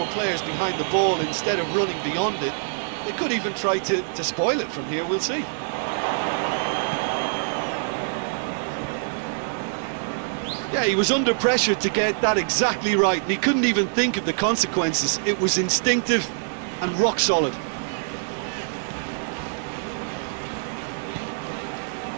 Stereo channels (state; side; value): silent; left; digital silence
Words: players behind the ball instead of running beyond it. They could even try to spoil it from here. We'll see. Yeah, he was under pressure to get that exactly right, and he couldn't even think of the consequences. It was instinctive and rock solid.